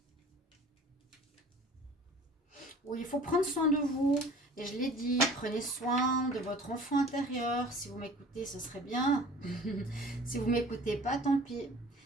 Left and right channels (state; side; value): normal; both; correlation 0.46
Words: Oui, il faut prendre soin de vous. Et je l'ai dit, prenez soin de votre enfant intérieur. Si vous m'écoutez, ce serait bien. Si vous ne m'écoutez pas, tant pis.